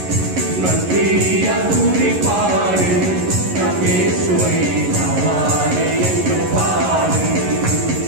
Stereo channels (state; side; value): late; left; 11 ms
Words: நன்றியால் துதி பாடு நம் இயேசுவை நாவாலே என்றும் பாடு.